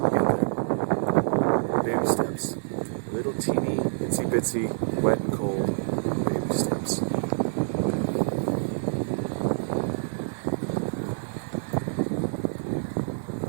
Get there. Baby steps. Little teeny, itsy bitsy, wet and cold baby steps.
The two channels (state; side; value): silent; left; digital silence